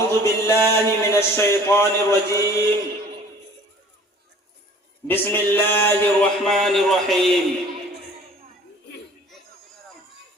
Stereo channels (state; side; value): normal; both; correlation 0.49